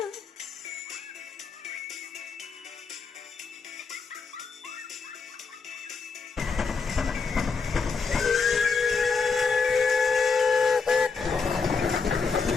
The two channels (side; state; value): right; quieter; 4.9 dB